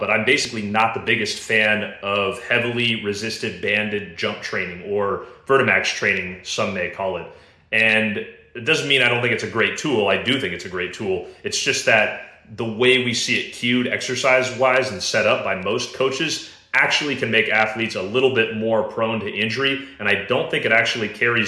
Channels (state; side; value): identical; both; correlation 1.00